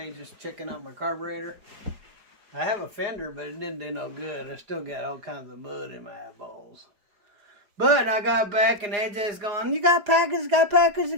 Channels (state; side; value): late; left; 4.8 ms